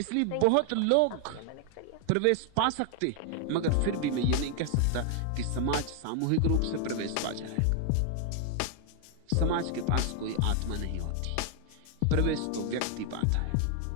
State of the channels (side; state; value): both; different; correlation 0.00